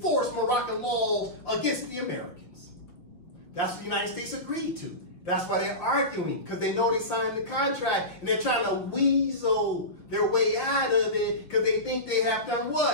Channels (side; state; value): right; late; 6.0 ms